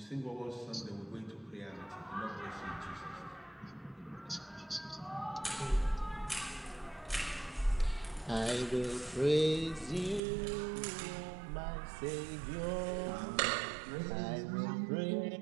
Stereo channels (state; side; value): drops out; left; at 10.2 s